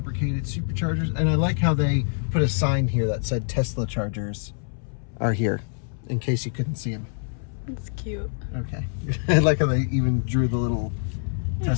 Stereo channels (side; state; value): right; silent; 62 dB below the other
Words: Superchargers. And I like how they put a sign here that said Tesla chargers are here, in case you couldn't see them. It's cute. Okay. I like how they even drew the little